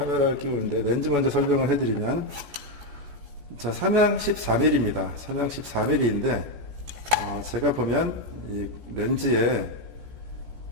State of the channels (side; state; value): left; late; 14 ms